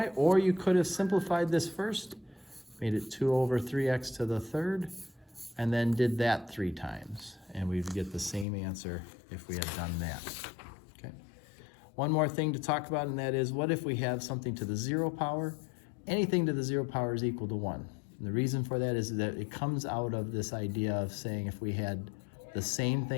or you could have simplified this first, made it 2 over 3x to the 3rd, and then did that 3 times. And we'd get the same answer if we had done that. Okay. One more thing to talk about, and that is, what if we have something to the 0 power? Anything to the 0 power is equal to 1. And the reason for that is that it comes out of this idea of saying if we had the same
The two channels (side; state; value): right; drops out; at 8.5 s